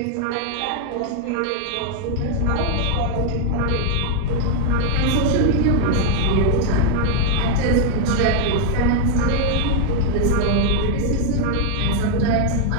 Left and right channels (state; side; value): different; both; correlation 0.00